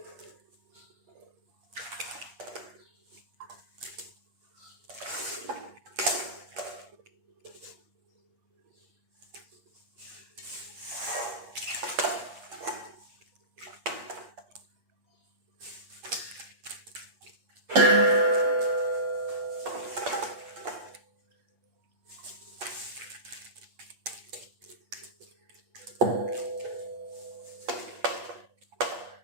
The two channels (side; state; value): left; late; 8.4 ms